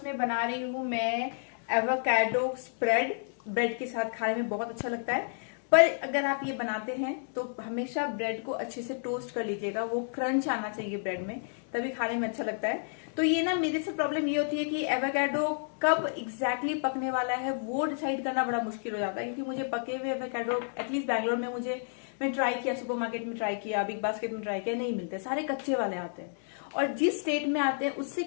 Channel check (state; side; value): silent; right; digital silence